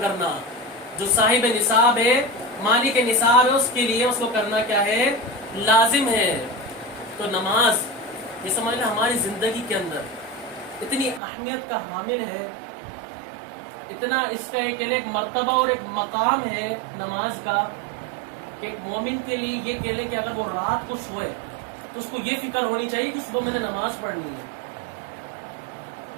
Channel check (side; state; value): left; drops out; at 11.2 s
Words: کرنا۔ جو صاحب نصاب ہے، مالک نصاب ہے، اس کے لیے اس کو کرنا کیا ہے؟ لازم ہے۔ تو نماز یہ سمجھ لیں ہماری زندگی کے اندر اتنی اہمیت کا حامل ہے، اتنا اس کا ایک مرتبہ اور ایک مقام ہے نماز کا، کہ ایک مومن کے لیے یہ کہہ لے کہ اگر وہ رات کو سوئے تو اس کو یہ فکر ہونی چاہیے کہ صبح میں نے نماز پڑھنی ہے۔